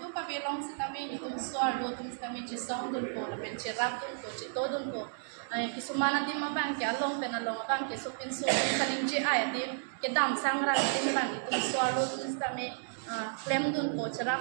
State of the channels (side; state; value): left; silent; digital silence